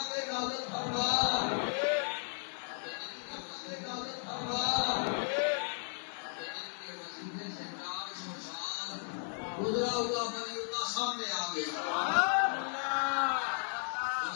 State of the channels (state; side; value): silent; right; 54 dB below the other